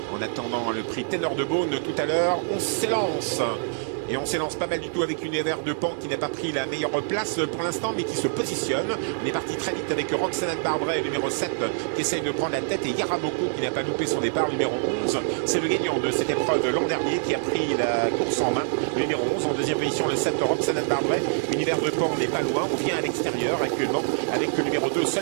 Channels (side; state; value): left; silent; 61 dB below the other